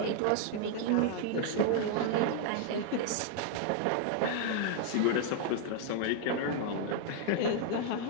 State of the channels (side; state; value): both; different; correlation 0.00